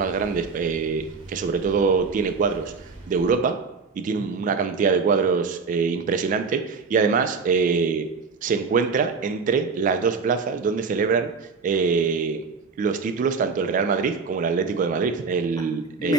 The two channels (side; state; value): left; quieter; 4.9 dB